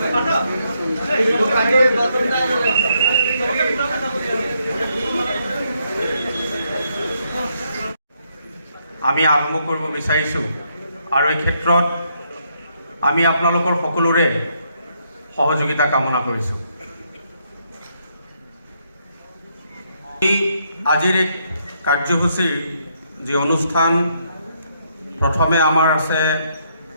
আমি আৰম্ভ কৰিব বিচাৰিছোঁ আৰু এই ক্ষেত্ৰত আমি আপোনালোকৰ সকলোৰে সহযোগিতা কামনা কৰিছোঁ। আজিৰ এই কাৰ্যসূচীৰ যি অনুষ্ঠান প্ৰথমে আমাৰ আছে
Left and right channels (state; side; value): inverted; both; correlation -0.75